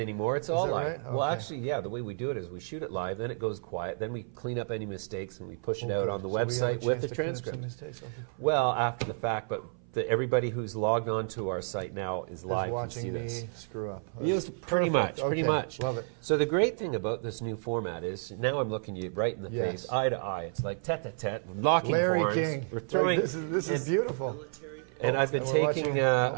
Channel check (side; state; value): left; silent; 56 dB below the other